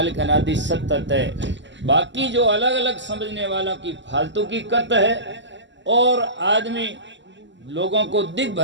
अनादि सतत है। बाकी जो अलग अलग समझने वाला की फालतू की कत है और आदमी लोगों को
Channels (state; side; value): late; left; 0.53 ms